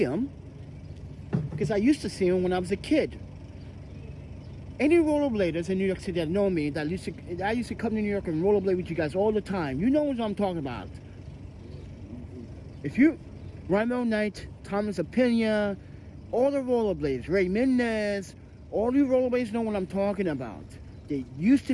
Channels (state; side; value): identical; both; correlation 1.00